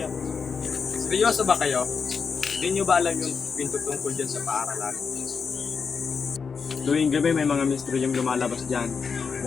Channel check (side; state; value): right; quieter; 5.7 dB